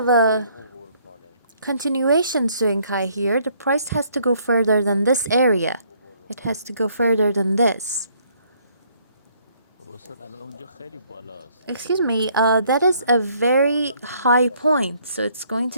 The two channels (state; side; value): inverted; both; correlation -0.65